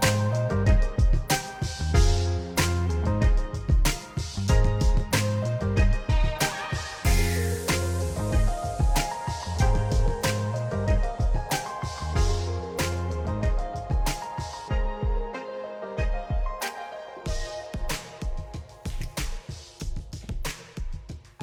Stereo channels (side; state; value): both; identical; correlation 1.00